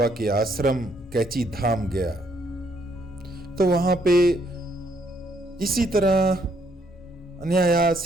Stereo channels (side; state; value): both; normal; correlation 0.70